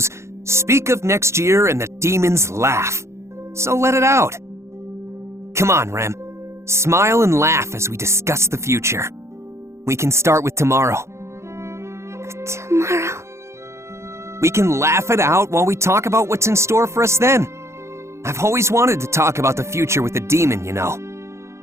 "Speak of next year and the demons laugh." So let it out. Come on, Rem. Smile and laugh as we discuss the future. We can start with tomorrow. Tomorrow? We can laugh it out while we talk about what's in store for us then. I've always wanted to talk about the future with a demon, you know.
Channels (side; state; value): left; late; 0.13 ms